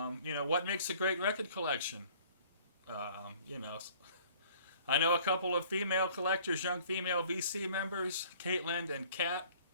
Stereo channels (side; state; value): both; inverted; correlation -0.54